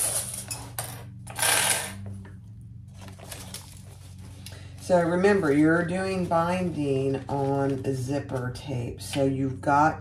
So remember, you're doing binding on a zipper tape. So you've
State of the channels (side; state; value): both; identical; correlation 1.00